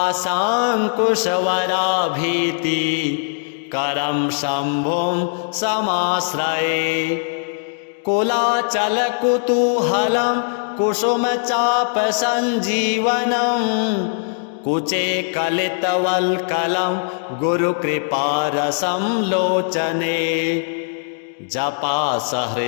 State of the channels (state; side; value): silent; right; digital silence